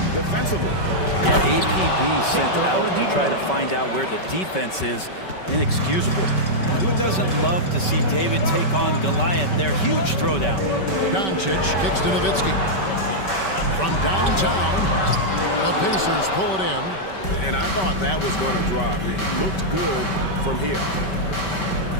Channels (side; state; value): right; late; 5.2 ms